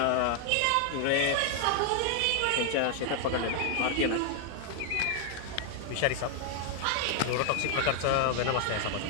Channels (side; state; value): both; different; correlation 0.00